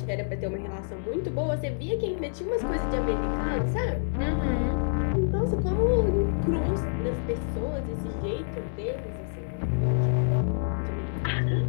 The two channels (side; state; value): right; silent; digital silence